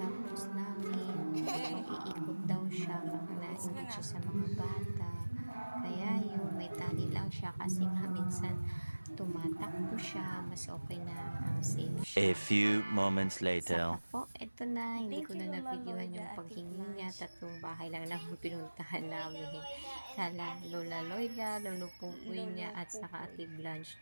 namin, mag-iikot daw siya, nainggit siya sa mga bata. Kaya yun, may tali lang siya kasi nga minsan tumatakbo siya, mas okay na ang safe siya. A few moments Saka later. po, eto na, hindi Thank ko you, na Lola nabigyan yung Loida, paghingi Ate niya. Blanche. 3 bahay lang naman pinuntahan namin. Kala Lola Loida, Lolo Pupoy niya, at saka Ate Blanche.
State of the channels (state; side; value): inverted; both; correlation -1.00